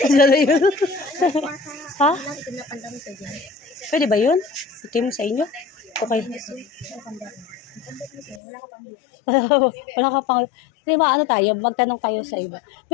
Ano yun? Ha? Pwede ba yun? Itim sa inyo? Okay. Wala ka pang... Di ba ano tayo? Magtanong tayo sa iba.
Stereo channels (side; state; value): right; drops out; at 8.4 s